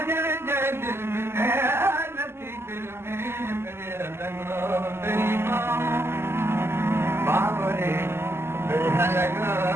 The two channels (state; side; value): late; left; 0.12 ms